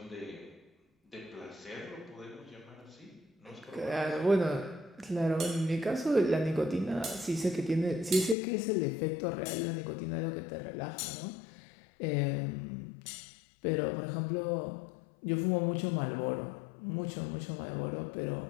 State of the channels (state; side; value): drops out; right; at 8.3 s